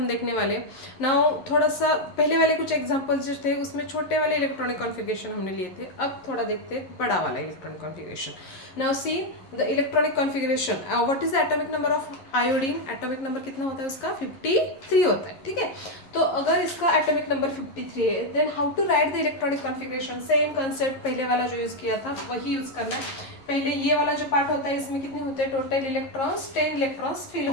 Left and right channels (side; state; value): right; late; 11 ms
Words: देखने वाले. Now थोड़ा सा पहले वाले कुछ एग्जांपल्स जो थे उसमें छोटे वाले इलेक्ट्रॉनिक कॉन्फ़िगरेशन हमने लिए थे. अब थोड़ा देखते हैं बड़ा वाला electronic configuration. Now see the electronic configuration. What is the atomic number of iodine? Atomic number कितना होता है उसका? 53 होता है. ठीक है, तो अगर इसका atomic number 53 है, then how to write the electronic configuration? Same concept पहले वाला जो यूज़ किया था वही यूज़ करना है. पहले ये वाला जो पार्ट होता है इसमें कितने होते हैं टोटल इलेक्ट्रॉन्स? 10 इलेक्ट्रॉन्स फिल